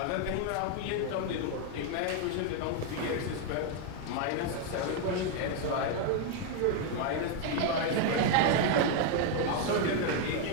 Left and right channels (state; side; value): different; both; correlation 0.00